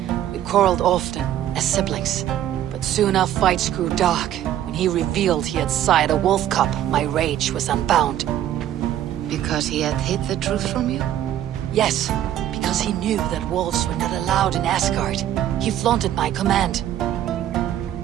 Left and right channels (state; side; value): quieter; left; 11.6 dB